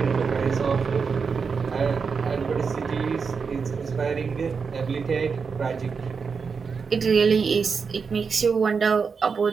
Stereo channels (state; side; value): quieter; left; 5.5 dB